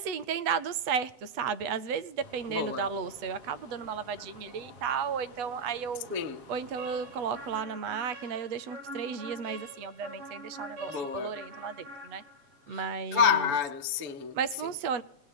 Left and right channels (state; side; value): late; left; 8.2 ms